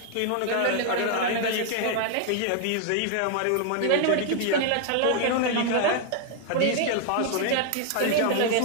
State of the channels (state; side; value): different; both; correlation 0.00